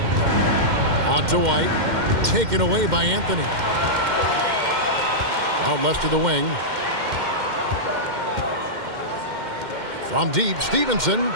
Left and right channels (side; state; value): left; late; 2.1 ms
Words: Out to White. Taken away by Anthony. Out left to the wing. From deep, Stevenson.